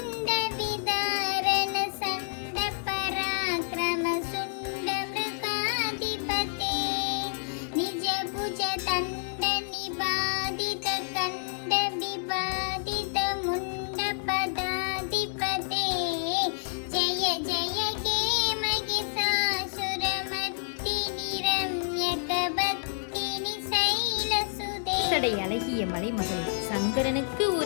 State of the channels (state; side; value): silent; right; digital silence